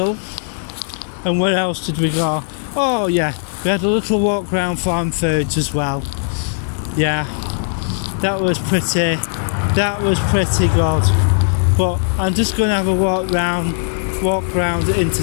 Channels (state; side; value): silent; right; digital silence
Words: And where else did we go? Oh yeah, we had a little walk round Farm Foods as well. Yeah, that was pretty good. But I'm just going to have a walk round